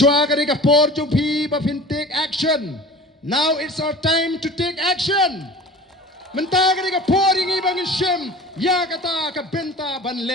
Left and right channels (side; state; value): both; normal; correlation 0.39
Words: kadai ka por jung pi ba fin take action. Now it's our time to take action. Menta kadai ka por ingi bang shim ya kata ka benta ban